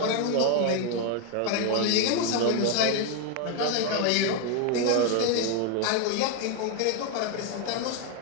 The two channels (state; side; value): different; both; correlation 0.01